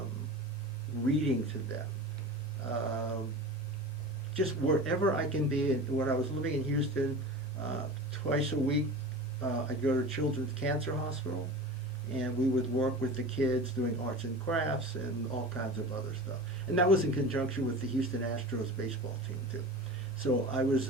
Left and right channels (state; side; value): normal; both; correlation 0.33